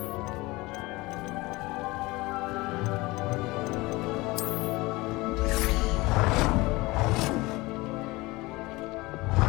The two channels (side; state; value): right; quieter; 22.0 dB